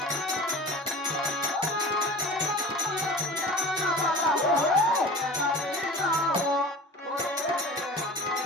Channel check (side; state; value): both; normal; correlation 0.37